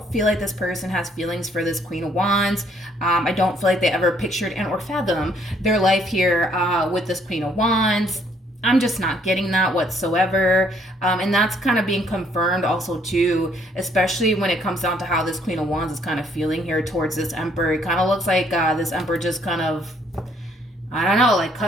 feel like this person has feelings for this Queen of Wands. I don't feel like they ever pictured and or fathomed their life here with this Queen of Wands. I'm just not getting that whatsoever. And that's kind of being confirmed also too, especially when it comes down to how this Queen of Wands is kind of feeling here towards this Emperor. It kind of looks like this Emperor just kind of, I don't know, like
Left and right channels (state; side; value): normal; both; correlation 0.66